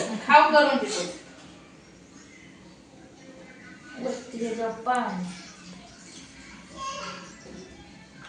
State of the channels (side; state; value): both; identical; correlation 1.00